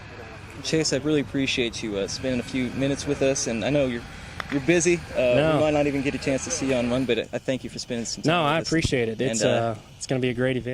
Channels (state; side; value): identical; both; correlation 1.00